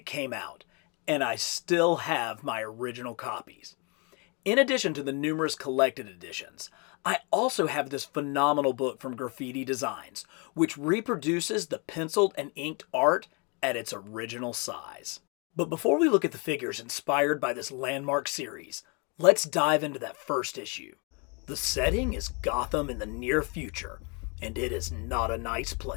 came out, and I still have my original copies. In addition to the numerous collected editions, I also have this phenomenal book from Graffiti Designs, which reproduces the penciled and inked art at its original size. But before we look at the figures inspired by this landmark series, let's dive into that first issue. The setting is Gotham in the near future, and it is not a nice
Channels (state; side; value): quieter; right; 32.8 dB